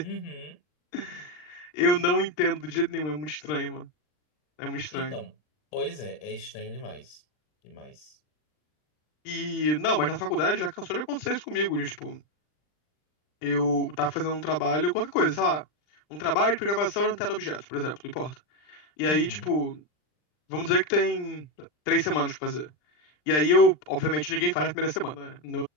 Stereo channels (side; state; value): right; late; 39 ms